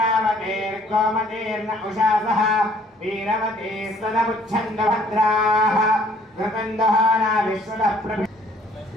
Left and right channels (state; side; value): normal; both; correlation 0.60